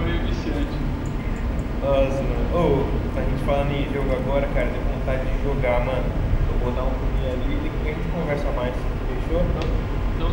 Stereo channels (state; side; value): identical; both; correlation 1.00